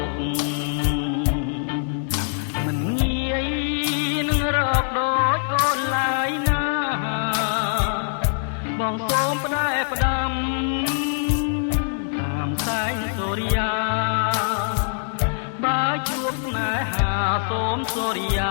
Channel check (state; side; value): silent; right; digital silence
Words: កមិនងាយនឹងរកដូចអូនឡើយណាបងសូមផ្ដែផ្ដាំតាមសែងសូរិយាបើជួបស្នេហាសូមសូរិយ